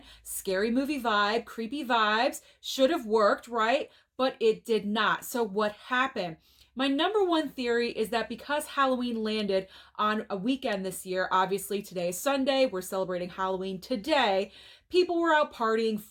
Scary movie vibe, creepy vibes, should have worked, right? But it did not. So what happened? My number one theory is that because Halloween landed on a weekend this year, obviously today is Sunday, we're celebrating Halloween today, people were out partying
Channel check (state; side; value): identical; both; correlation 1.00